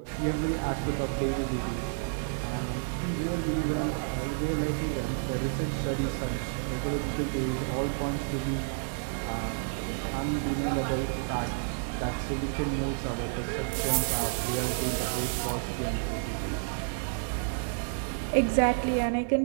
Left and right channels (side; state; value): left; silent; digital silence